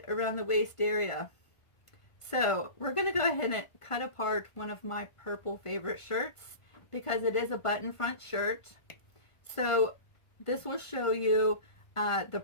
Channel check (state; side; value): late; right; 1.5 ms